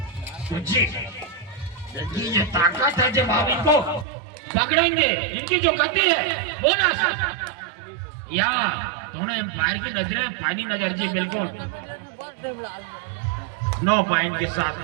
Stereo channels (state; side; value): drops out; left; at 4.0 s